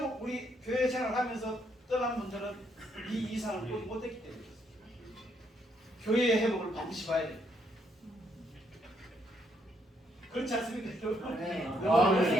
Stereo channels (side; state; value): both; normal; correlation 0.73